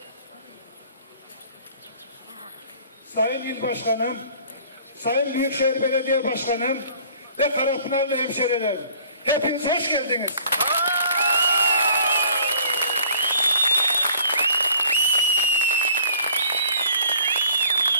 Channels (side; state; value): both; inverted; correlation -0.54